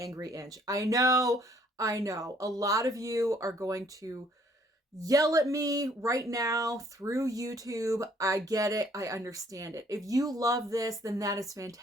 Inch. I know. A lot of you are going to yell at me right now through YouTube. I get it. I understand it. If you love this, then that is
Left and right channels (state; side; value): normal; both; correlation 0.62